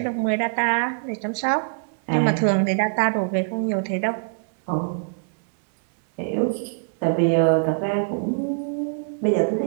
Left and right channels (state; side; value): silent; left; 63 dB below the other